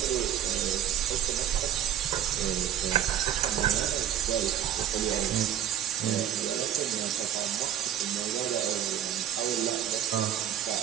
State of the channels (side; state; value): left; quieter; 10.3 dB